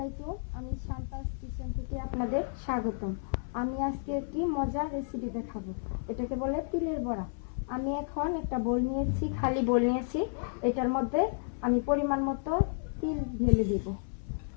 আমি শান্তাস কিচেন থেকে আপনাদের স্বাগতম। আমি আজকে একটি মজার রেসিপি দেখাবো। এটাকে বলে তিলের বড়া। আমি এখন একটা বোল নিয়েছি, খালি বোল নিয়েছি। এটার মধ্যে আমি পরিমাণ মতো তিল ঢেলে দিব।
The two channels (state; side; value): silent; right; 57 dB below the other